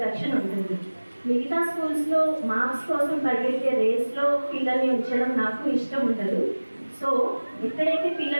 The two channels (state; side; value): inverted; both; correlation -1.00